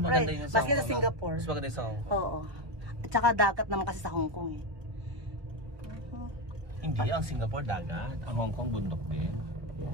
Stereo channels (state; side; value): late; left; 1.2 ms